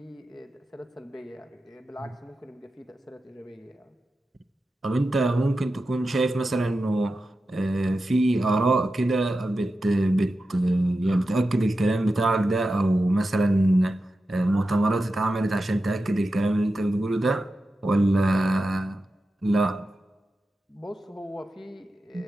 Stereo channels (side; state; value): both; normal; correlation 0.91